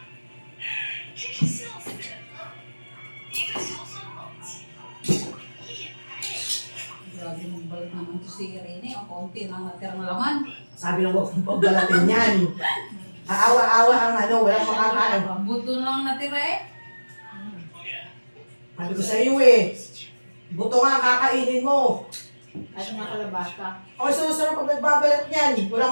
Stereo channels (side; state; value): both; inverted; correlation -1.00